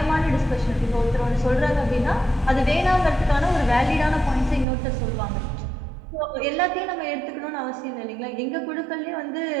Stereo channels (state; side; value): drops out; left; at 4.7 s